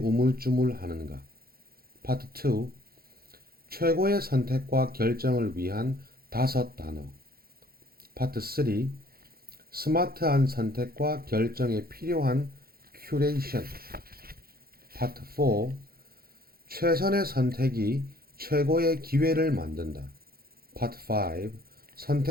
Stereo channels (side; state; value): left; late; 0.44 ms